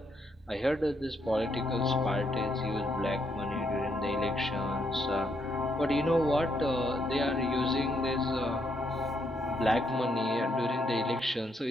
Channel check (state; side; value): normal; both; correlation 0.76